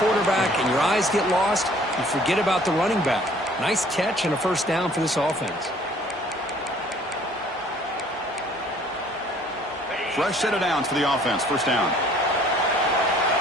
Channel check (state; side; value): normal; both; correlation 0.56